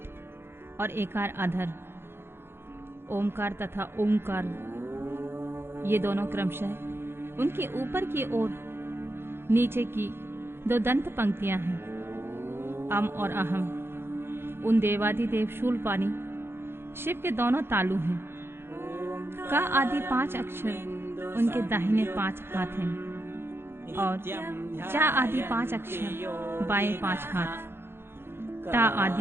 और एकार अधर। ओमकार तथा ओमकार ये दोनों क्रमशः उनके ऊपर की ओर नीचे की 2 दंत पंक्तियां हैं। अम और अहम उन देवादिदेव शूलपाणी शिव के दोनों तालु हैं। का आदि 5 अक्षर उनके दाहिने 5 हाथ हैं और चा आदि 5 अक्षर बाएं 5 हाथ। टा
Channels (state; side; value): late; left; 0.11 ms